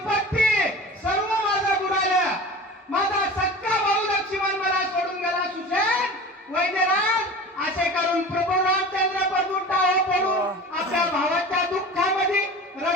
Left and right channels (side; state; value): both; normal; correlation 0.36